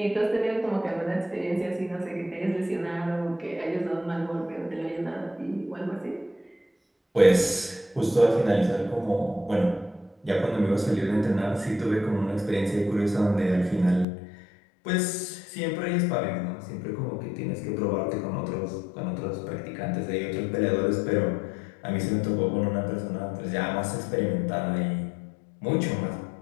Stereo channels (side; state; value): right; drops out; at 14.1 s